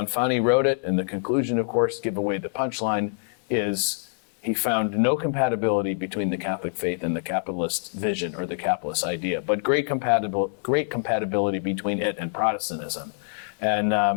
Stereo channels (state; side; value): silent; right; digital silence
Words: wrote it, and the conclusion, of course, give away the punchline, is he found no compatibility between the Catholic faith and the capitalist vision or the capitalist idea, but great compatibility between it and Protestantism.